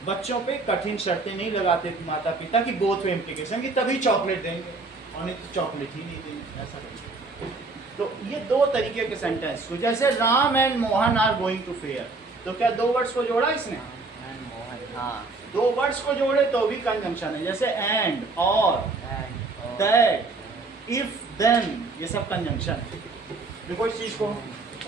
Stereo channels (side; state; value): left; quieter; 3.6 dB